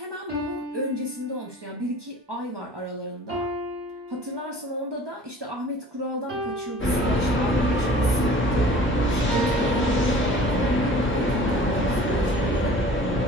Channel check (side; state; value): both; normal; correlation 0.46